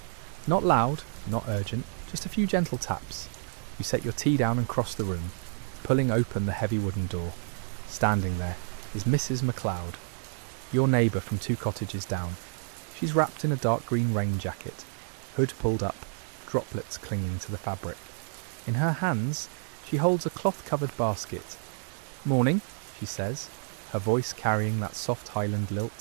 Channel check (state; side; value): silent; left; 58 dB below the other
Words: Not loud, not urgent, just a few gentle taps. You set your tea down and cross the room, pulling open the heavy wooden door. Standing there is Mrs. MacLeod, your neighbour from 2 cottages down. She's wrapped in a dark green rain jacket, hood pulled up, droplets clinging to the fabric. In her hands, she holds a cloth-covered basket. "Morning," she says, her voice carrying that soft Highland